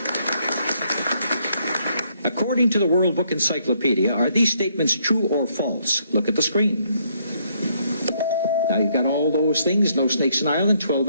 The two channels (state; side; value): inverted; both; correlation -0.71